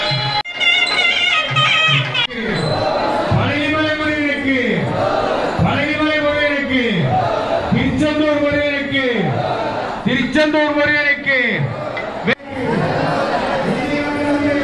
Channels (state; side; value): identical; both; correlation 1.00